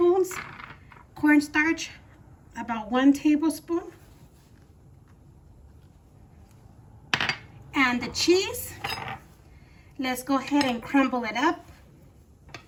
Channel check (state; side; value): identical; both; correlation 1.00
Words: Cornstarch, about 1 tablespoon. And the cheese, Let's go ahead and crumble it up.